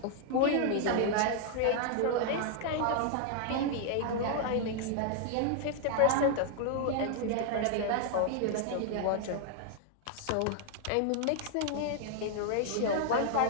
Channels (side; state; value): both; different; correlation 0.00